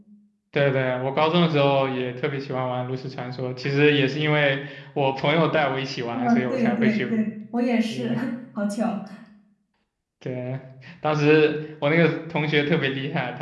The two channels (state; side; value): identical; both; correlation 1.00